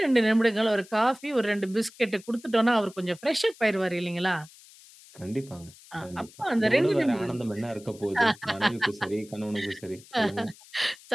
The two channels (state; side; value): noise; left; hiss, 23 dB below the sound